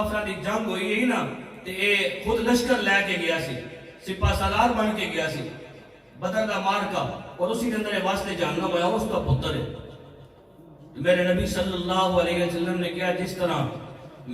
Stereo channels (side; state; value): both; identical; correlation 1.00